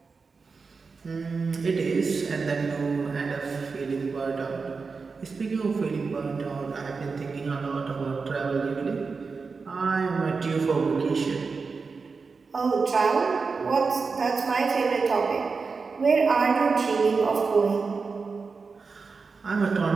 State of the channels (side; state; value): left; quieter; 4.7 dB